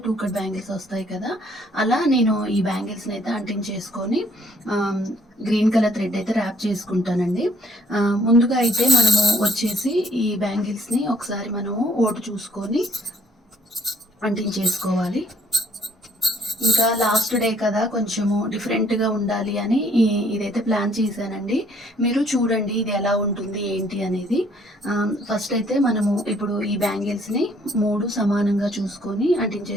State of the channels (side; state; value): both; normal; correlation 0.63